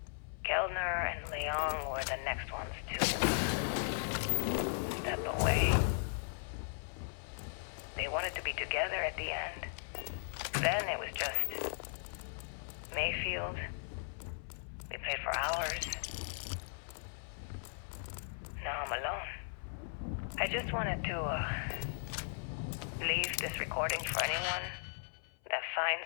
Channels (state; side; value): silent; right; 53 dB below the other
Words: Kellner and Leong were the next ones to step away. They wanted to be together at the end. Then it was just Mayfield. We played for hours. Now I'm alone. I just wanted to leave this recording for anyone that